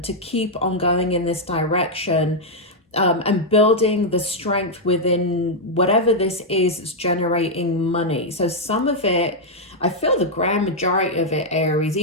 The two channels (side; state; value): both; normal; correlation -0.03